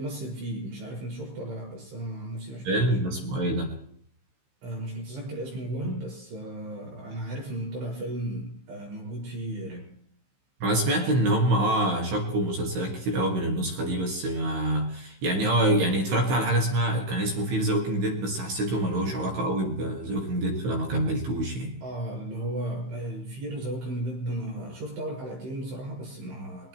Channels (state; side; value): late; left; 15 ms